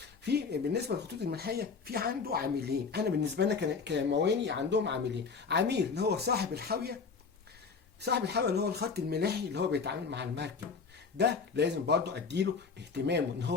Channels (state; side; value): quieter; right; 5.2 dB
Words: في بالنسبه للخطوط الملاحيه في عنده عاملين. انا بالنسبه لنا كمواني عندهم عاملين، عميل اللي هو صاحب الحاويه اللي هو الخط الملاحي اللي هو بيتعامل مع المركب، ده لازم برضو اديله اهتمامه، ان